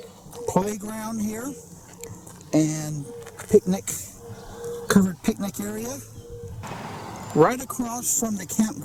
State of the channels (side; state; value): both; identical; correlation 1.00